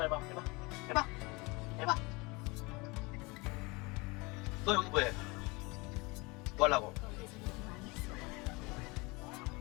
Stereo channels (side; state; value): right; quieter; 25.9 dB